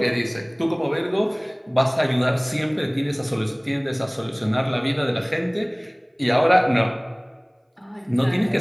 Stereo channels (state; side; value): identical; both; correlation 1.00